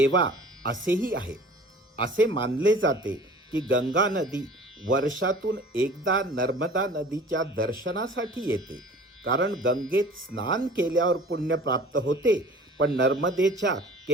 असेही आहे. असे मानले जाते की गंगा नदी वर्षातून एकदा नर्मदा नदीच्या दर्शनासाठी येते, कारण गंगेत स्नान केल्यावर पुण्य प्राप्त होते, पण नर्मदेच्या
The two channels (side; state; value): both; normal; correlation 0.46